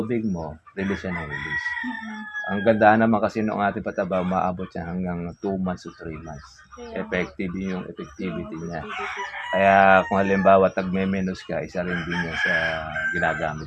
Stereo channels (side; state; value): both; identical; correlation 1.00